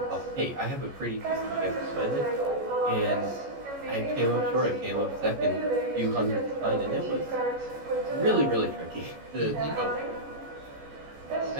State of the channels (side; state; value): left; late; 14 ms